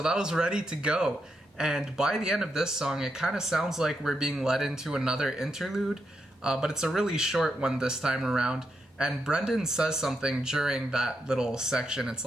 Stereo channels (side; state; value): both; normal; correlation 0.83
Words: that was Ready to Go. And by the end of this song, it kind of sounds like we're being led into another interlude, but it's a really short one this time around. And Brendan says something during that little section. It's